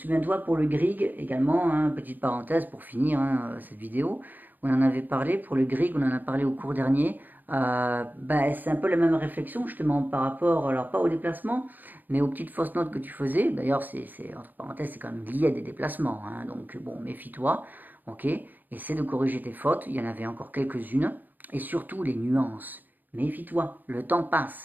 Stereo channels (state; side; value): late; left; 0.086 ms